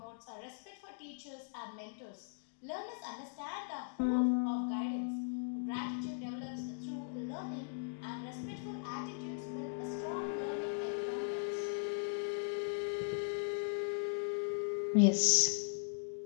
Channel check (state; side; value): silent; right; digital silence